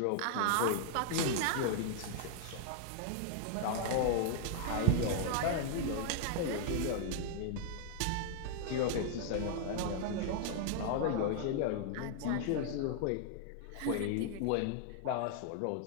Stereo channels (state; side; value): different; both; correlation 0.00